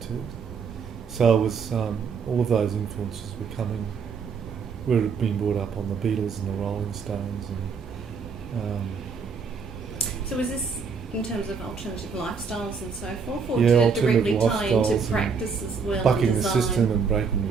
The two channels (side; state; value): left; quieter; 5.6 dB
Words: to. So it was all of those influences were coming. We'd been brought up on the Beatles and the Rolling Stones, and So was this in terms of alternative lifestyles and so forth, or yeah, did it alternative directly tie into lifestyles practice as well? bucking and the design? system and breaking